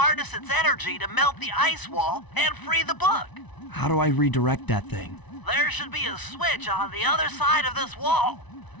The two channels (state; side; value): late; right; 1.0 ms